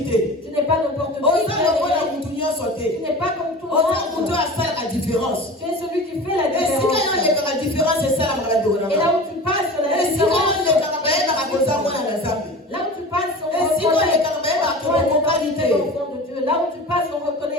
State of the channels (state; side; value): normal; both; correlation 0.35